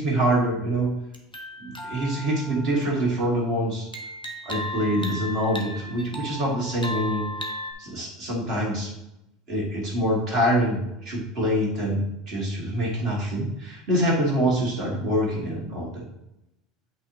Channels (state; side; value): normal; both; correlation 0.33